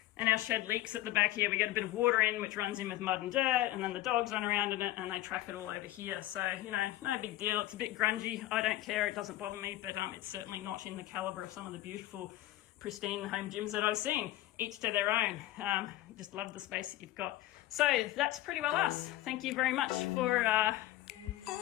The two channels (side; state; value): right; quieter; 15.5 dB